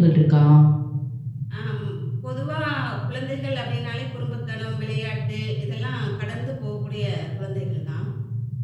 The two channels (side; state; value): both; identical; correlation 1.00